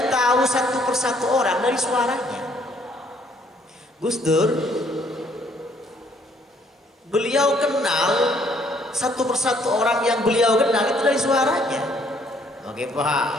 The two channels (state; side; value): normal; both; correlation 0.65